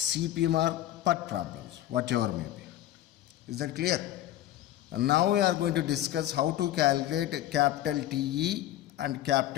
or PERT problems, whatever may be. Is that clear? And now we are going to discuss how to calculate capital TE and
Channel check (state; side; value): quieter; right; 13.4 dB